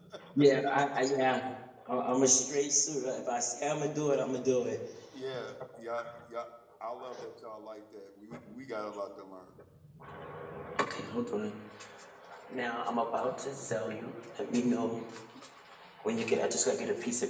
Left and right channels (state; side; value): identical; both; correlation 1.00